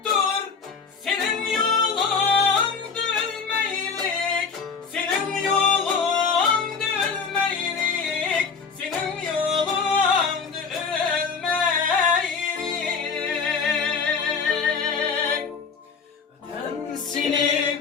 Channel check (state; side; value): quieter; right; 5.4 dB